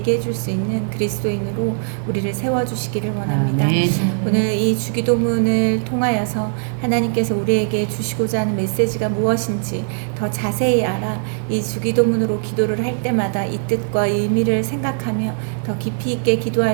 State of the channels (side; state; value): left; silent; digital silence